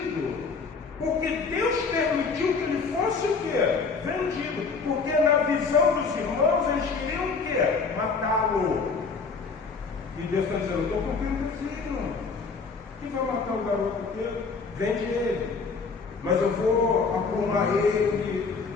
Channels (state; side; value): quieter; right; 4.8 dB